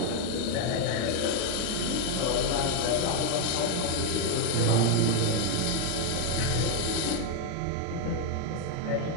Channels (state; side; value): different; both; correlation 0.01